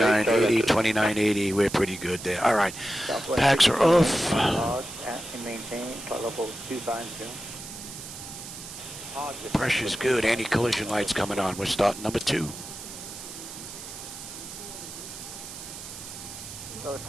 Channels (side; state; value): right; noise; hiss, 12 dB below the sound